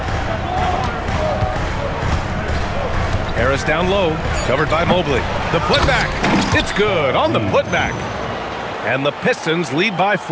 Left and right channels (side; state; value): both; identical; correlation 1.00